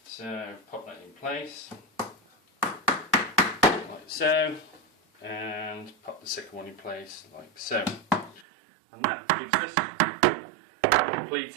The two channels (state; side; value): drops out; left; at 8.5 s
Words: So pop that in place like so, and pop the second one in place like so, and that gives us a